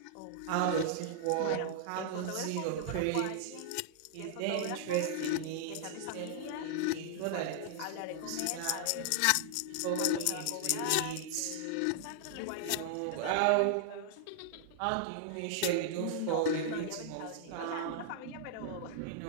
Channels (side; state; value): both; different; correlation -0.01